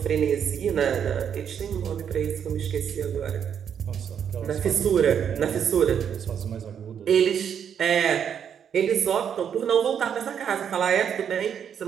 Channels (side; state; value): left; quieter; 8.2 dB